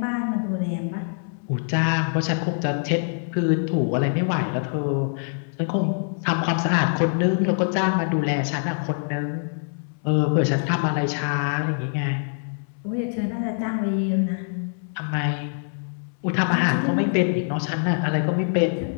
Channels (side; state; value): right; silent; digital silence